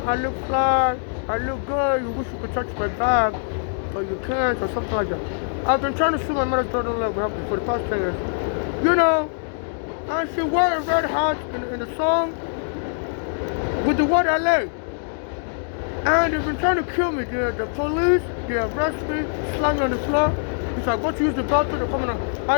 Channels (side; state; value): right; silent; digital silence